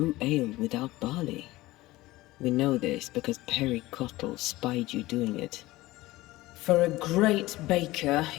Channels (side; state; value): right; quieter; 18.6 dB